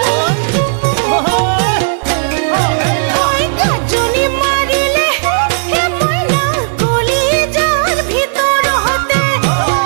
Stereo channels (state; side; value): silent; left; digital silence